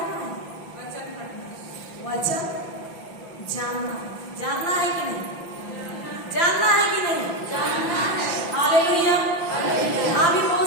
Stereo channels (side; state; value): right; late; 5.9 ms